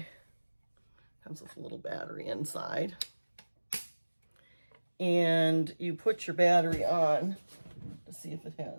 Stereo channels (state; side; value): inverted; both; correlation -1.00